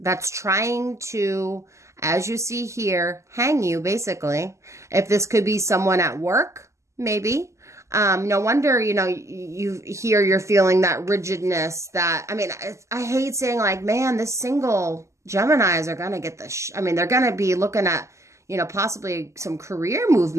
trying to, as you see here, hang you, basically. If this could be someone at work, maybe. No wonder, you're feeling that rigidness that, I hate saying man, this single Geminis are going to get they're going to be looking at, possibly some career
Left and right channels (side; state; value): left; late; 0.14 ms